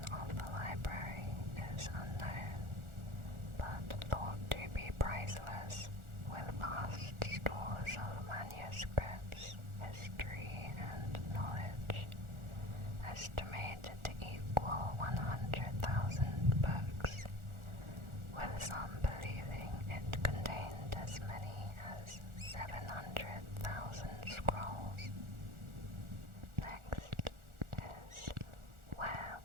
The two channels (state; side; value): late; left; 1.4 ms